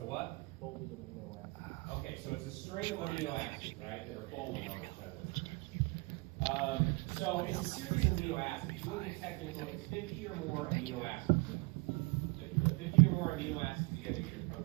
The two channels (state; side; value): quieter; left; 27.3 dB